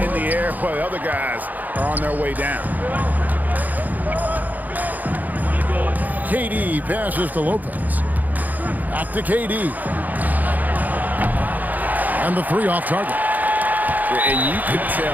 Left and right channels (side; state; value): left; late; 0.082 ms